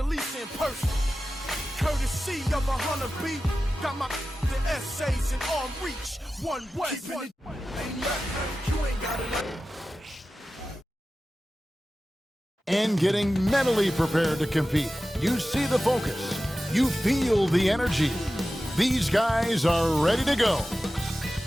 Lisa in person. Courtesy of 100 B. Got my the essays in arm reach. One way. You ain't got it. And getting mentally prepared to compete. You see the focus. You feel the energy. These guys are ready to go.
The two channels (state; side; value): normal; both; correlation 0.94